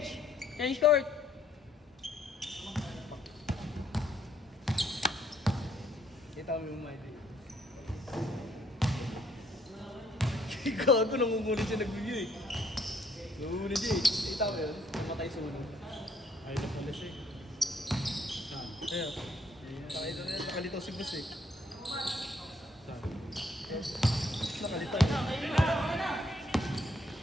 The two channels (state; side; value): normal; both; correlation 0.67